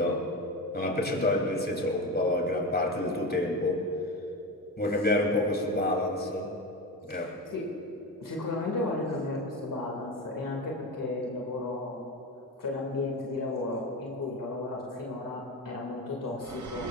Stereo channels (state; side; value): normal; both; correlation 0.22